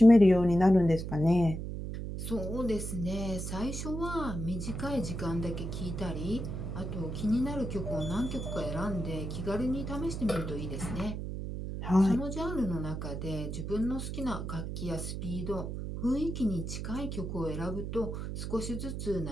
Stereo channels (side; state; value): right; noise; hum, 5 dB below the sound